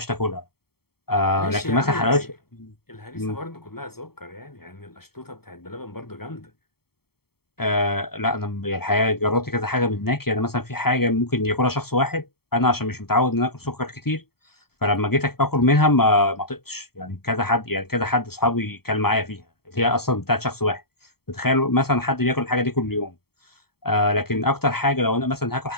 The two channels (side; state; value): right; late; 0.95 ms